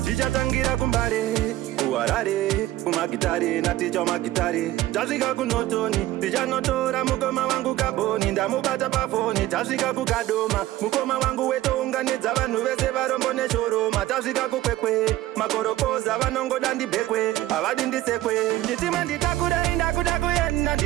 Zvichatangira kumbare, kuharare, kumagitare naticha magitare. Tasvika kunotoni, tichanotora mukoma wangu kaboni, ndamubata pafoni. Tasvika kukadoma, mukoma wangu wetounganidza vanhu vese varombo neshoroma. Tasvika kukwekwe, makorokoza vanongoda ndibhekwe, havadi ndisekwe. Chitima nditakure, ndakuda kuenda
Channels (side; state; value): left; quieter; 15.5 dB